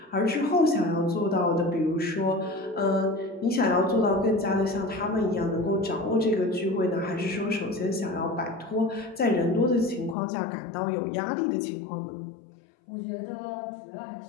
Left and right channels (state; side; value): drops out; right; at 10.2 s